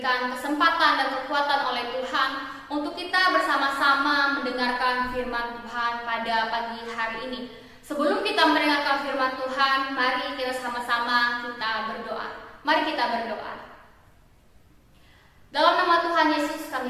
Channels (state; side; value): identical; both; correlation 1.00